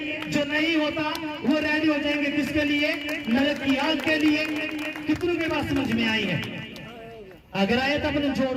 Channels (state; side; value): identical; both; correlation 1.00